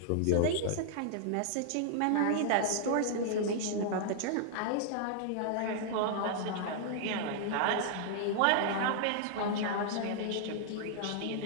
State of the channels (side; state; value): both; different; correlation -0.01